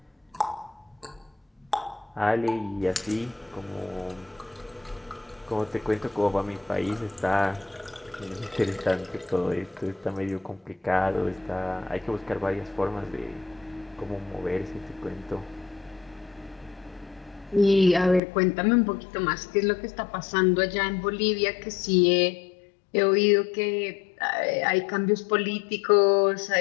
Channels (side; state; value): right; drops out; at 18.2 s